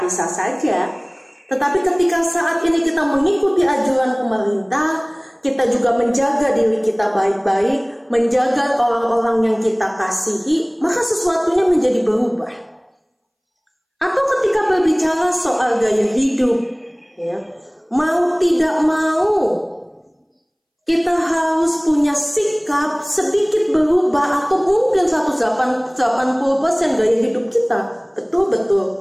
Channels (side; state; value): both; identical; correlation 1.00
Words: saja. Tetapi ketika saat ini kita mengikuti anjuran pemerintah, kita juga menjaga diri kita baik-baik, menjaga orang-orang yang kita kasihi, maka sesuatunya menjadi berubah. Atau ketika berbicara soal gaya hidup, ya, mau tidak mau kita harus punya sikap sedikit berubah, atau mungkin 180% gaya hidup kita